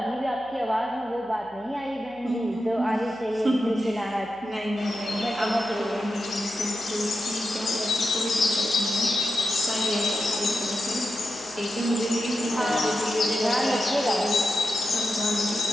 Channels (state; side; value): noise; right; hum, 28 dB below the sound